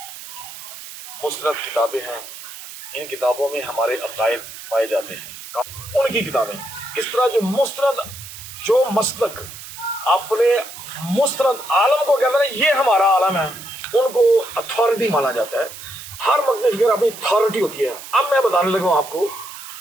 مستند کتابیں ہیں، ان کتابوں میں ہمارے عقائد پائے جاتے ہیں۔ ان کی کتابیں اس طرح جو مستند، جو مسلک اپنے مستند عالم کو کہتے ہیں یہ ہمارا عالم ہے، ان کو اتھارٹی مانا جاتا ہے۔ ہر مقام فکر اپنی اتھارٹی ہوتی ہے۔ اب میں بتانے لگا ہوں آپ کو،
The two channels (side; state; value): right; noise; hiss, 13 dB below the sound